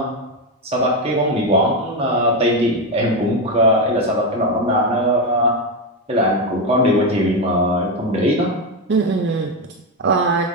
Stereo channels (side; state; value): both; normal; correlation 0.10